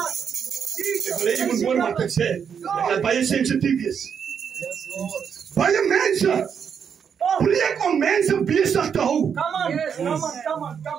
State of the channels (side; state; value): left; quieter; 7.3 dB